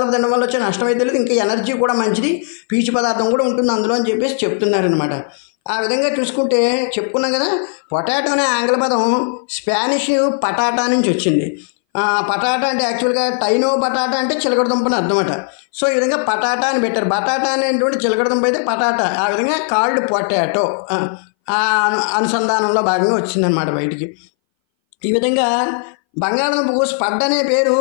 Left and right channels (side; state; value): right; silent; 62 dB below the other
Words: తినడం వల్ల వచ్చే నష్టం అయితే లేదు, ఇంకా ఎనర్జీ కూడా మంచిది, పీచు పదార్థం కూడా ఉంటుంది అందులో అని చెప్పేసి చెప్తున్నారనమాట. ఆ విధంగా చూసుకుంటే చెప్పుకున్నాం కదా, పొటాటో అనే ఆంగ్ల పదం స్పానిష్ పటాటా నుంచి వచ్చింది. పటాటా అంటే యాక్చువల్గా టైనో బటాటా అంటే చిలకడ దుంపని అర్థమట. సో ఈ విధంగా పటాటా అని పెట్టారు. బటాటా అనేటువంటి చిలకడ దుంప అయితే పటాటా, ఆ విధంగా కాల్డ్ పొటాటో అనుసంధానంలో భాగంగా వచ్చిందనమాట బయటికి. ఈ విధంగా బంగాళదుంపకు స్పడ్ అనే పేరు